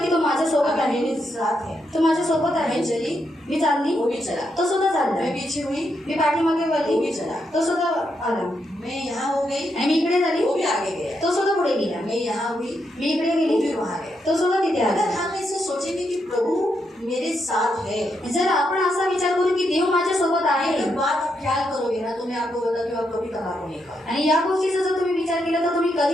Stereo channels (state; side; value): normal; both; correlation 0.81